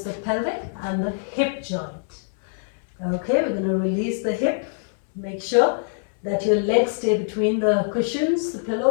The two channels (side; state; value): right; silent; digital silence